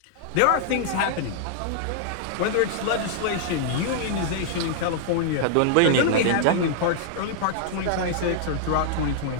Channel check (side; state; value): both; different; correlation -0.01